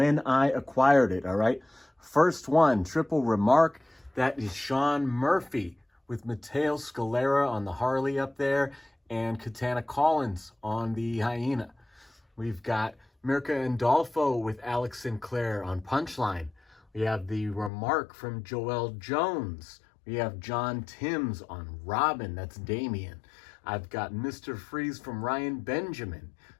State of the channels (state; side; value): drops out; right; at 17.7 s